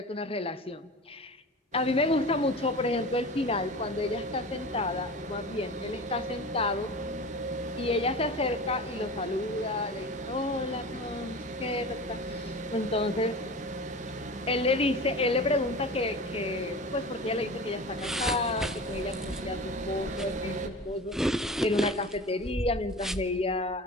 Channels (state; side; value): normal; both; correlation 0.34